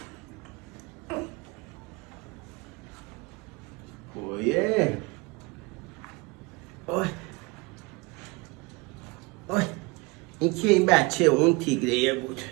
اوه اوه این که این بچه اون تیگریه بود.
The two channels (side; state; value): left; quieter; 25.9 dB